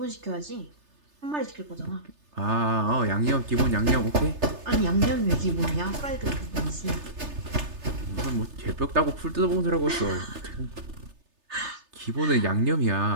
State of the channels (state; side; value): late; left; 3.3 ms